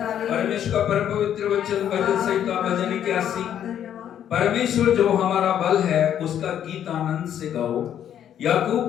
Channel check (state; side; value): quieter; right; 9.9 dB